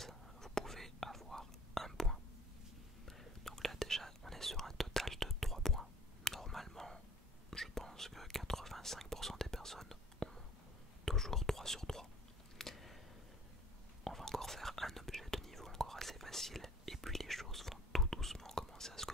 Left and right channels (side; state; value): both; normal; correlation 0.51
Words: vous pouvez avoir un point. Donc là déjà, on est sur un total de 3 points. Normalement, je pense que 85% des personnes ont toujours 3 sur 3. On va encore faire un objet de niveau encore assez facile et puis les choses vont tout doucement commencer à se